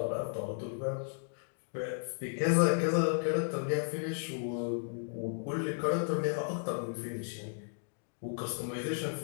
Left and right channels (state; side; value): silent; right; digital silence